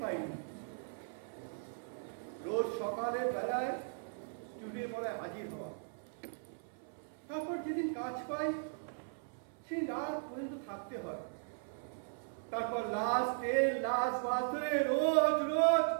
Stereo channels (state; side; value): silent; left; 53 dB below the other